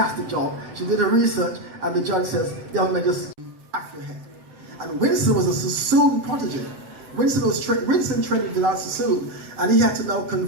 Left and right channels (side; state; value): left; late; 7.8 ms